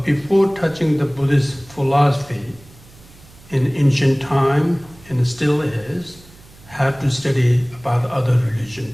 before touching the Buddhist philosophy in ancient time, and still is, have to study about other religion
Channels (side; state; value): right; noise; hum, 24 dB below the sound